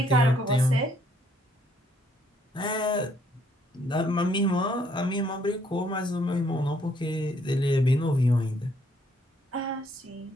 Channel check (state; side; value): normal; both; correlation 0.67